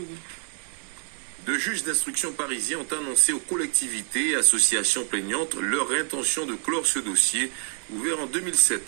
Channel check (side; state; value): left; quieter; 39.4 dB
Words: Deux juges d'instruction parisiens ont annoncé aux collectivités et associations plaignantes leur intention de clore ce dossier, ouvert en